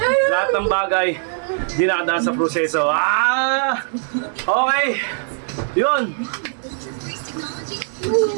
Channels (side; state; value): left; silent; 65 dB below the other